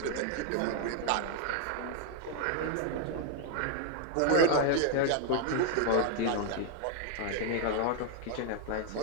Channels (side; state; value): both; different; correlation 0.00